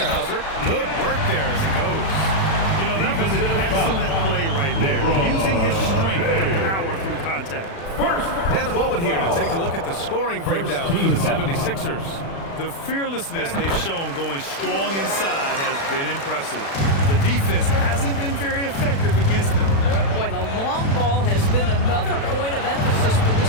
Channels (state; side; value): late; right; 36 ms